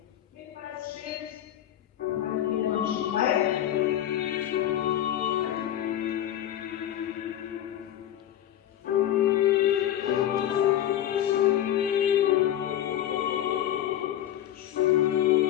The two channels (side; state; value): right; quieter; 11.6 dB